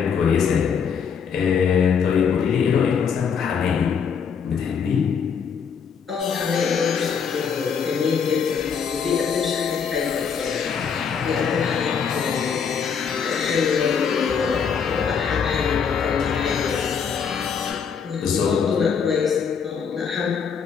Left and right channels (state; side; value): quieter; right; 6.7 dB